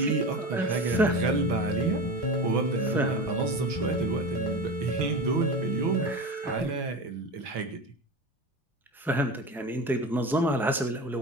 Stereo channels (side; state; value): both; normal; correlation 0.28